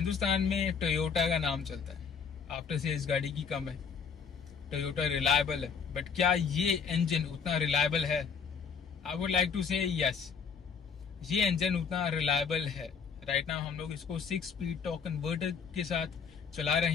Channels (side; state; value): right; quieter; 6.2 dB